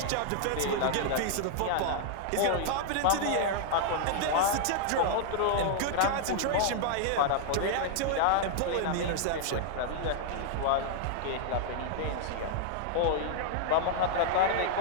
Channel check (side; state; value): both; different; correlation -0.01